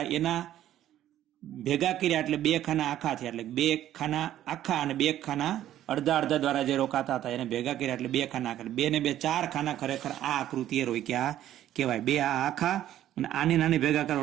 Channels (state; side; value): quieter; left; 12.2 dB